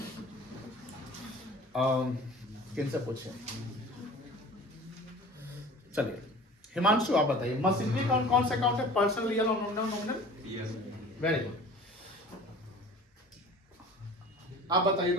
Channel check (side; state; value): both; normal; correlation 0.43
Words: हूँ, किनसे पूछे? चलिए हिमांशु आप बताइए, मशीनरी अकाउंट कौन सा अकाउंट है? पर्सनल, रियल और नॉमिनल? Very good. आप बताइए